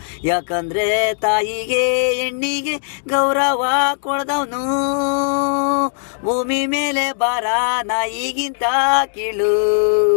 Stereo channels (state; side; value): silent; right; digital silence